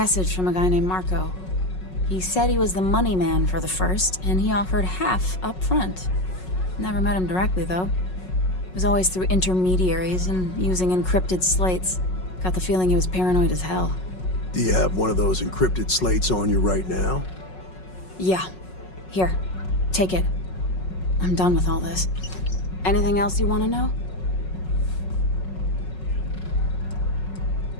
from a guy named Marco. He said he was the money man for the First, and he offered half up front. Never met him directly, though. It was always through intermediaries and using encrypted slates. Got the feeling he was paranoid as hell. Do you have one of those encrypted slates on you right now? Yeah. Here. Take it. I'm done with all this. Anything else you want to know?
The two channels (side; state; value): right; late; 5.4 ms